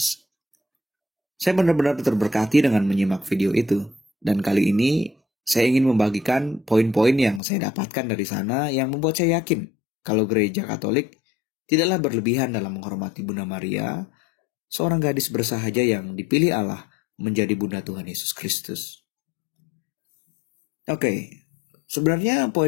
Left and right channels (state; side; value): drops out; right; at 7.4 s